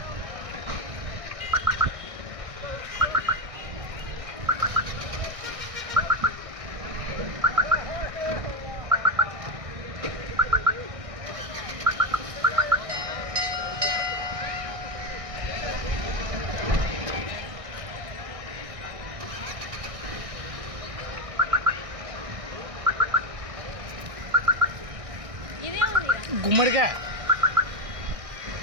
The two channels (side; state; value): left; late; 1.6 ms